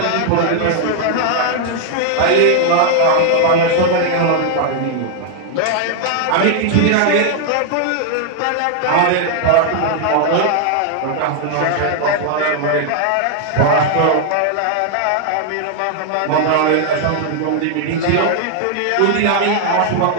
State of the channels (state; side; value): different; both; correlation 0.00